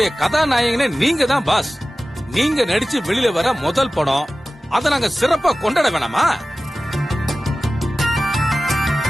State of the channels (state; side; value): normal; both; correlation 0.96